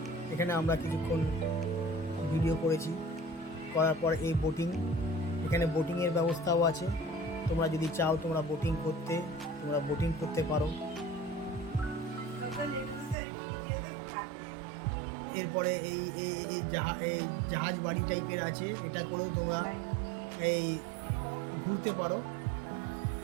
এখানে আমরা কিছুক্ষণ ভিডিও করেছি। করার পর এই এখানে বোটিংয়ের ব্যবস্থাও আছে। তোমরা যদি চাও তোমরা বোটিং করতে পারো। এরপরে এই এই এই জাহাজ বাড়ি টাইপের আছে, এটা করেও তোমরা এই ঘুরতে পারো।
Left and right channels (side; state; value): left; drops out; at 13.2 s